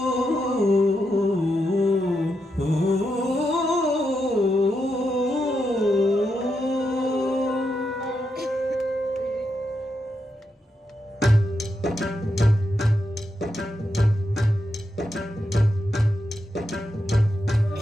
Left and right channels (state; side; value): normal; both; correlation 0.84